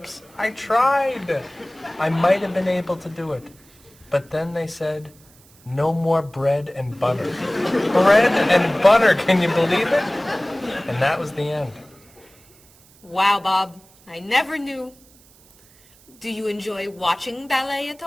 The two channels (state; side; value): noise; right; hiss, 28 dB below the sound